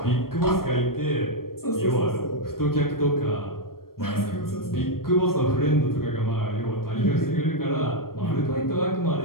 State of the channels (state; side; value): late; right; 0.93 ms